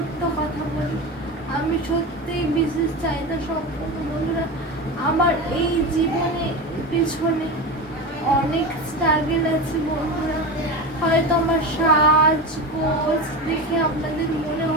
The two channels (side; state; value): both; normal; correlation 0.23